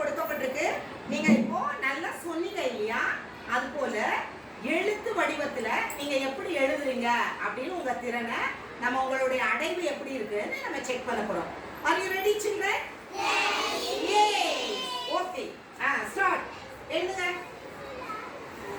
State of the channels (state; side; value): identical; both; correlation 1.00